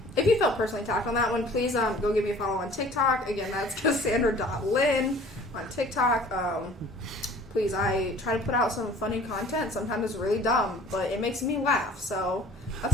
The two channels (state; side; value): normal; both; correlation 0.50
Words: if you felt personally attacked on that one, please go give me a follow on TikTok. Again, that's Cassandra.Lynn on TikTok. Please, I try to put out some funny content. Sometimes it's really dumb, but it makes me laugh. So